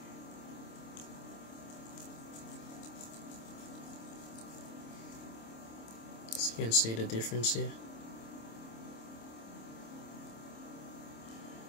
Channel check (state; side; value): late; right; 26 ms